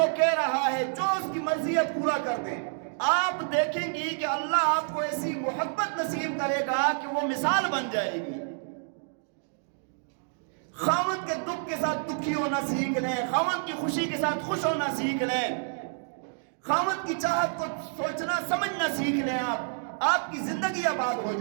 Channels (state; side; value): silent; left; 59 dB below the other